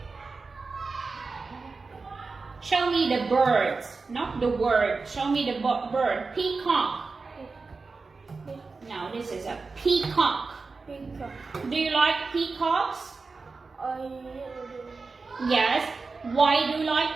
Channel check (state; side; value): quieter; left; 4.2 dB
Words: Show me the birds, not the word. Show me the bird. Peacock. No, this is a peacock. Peacock. Do you like peacocks? I do. Yes. Why do you